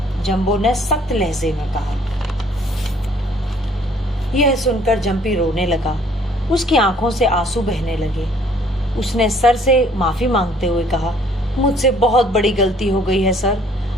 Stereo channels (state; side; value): normal; both; correlation 0.59